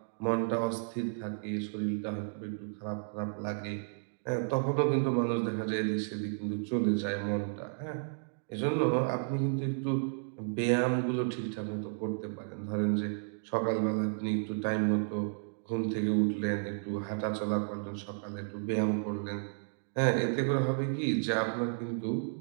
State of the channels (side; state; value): left; silent; digital silence